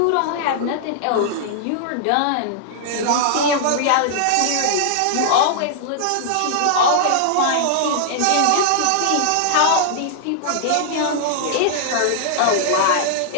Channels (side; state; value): both; different; correlation -0.01